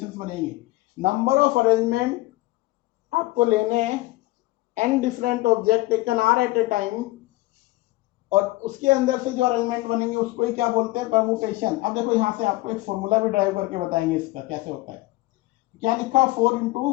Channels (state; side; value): quieter; right; 19.5 dB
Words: बनेंगे। नंबर ऑफ अरेंजमेंट आपको लेने हैं, n different object taken are at a time, और उसके अंदर से जो अरेंजमेंट बनेंगे उसको ही क्या बोलते हैं, परमुटेशन। अब देखो यहाँ से आपको एक फॉर्मूला भी ड्राइव करके बताएंगे इसका कैसे होता है। क्या लिखा, 4 ×